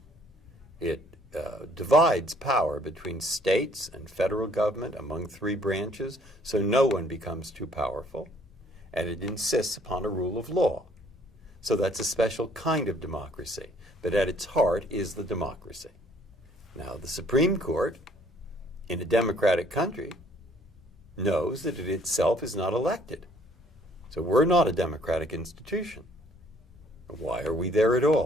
It divides power between states and federal government among three branches, so no one becomes too powerful. And it insists upon a rule of law. So that's a special kind of democracy. But at its heart is the democracy. Now, the Supreme Court, in a democratic country, knows that it itself is not elected. So we're not a democratic institution. Why are we there at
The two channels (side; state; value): both; normal; correlation 0.61